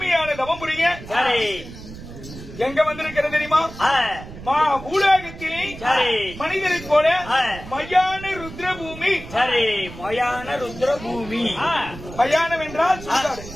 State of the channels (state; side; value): noise; right; rumble, 14 dB below the sound